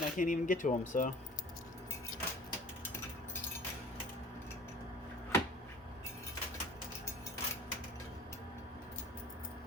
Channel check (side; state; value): both; normal; correlation 0.45